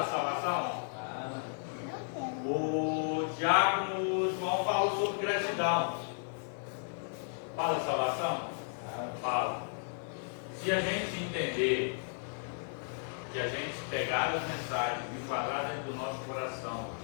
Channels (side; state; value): right; silent; digital silence